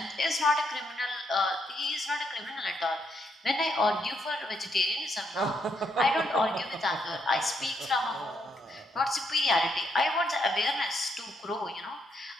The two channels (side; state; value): both; normal; correlation 0.76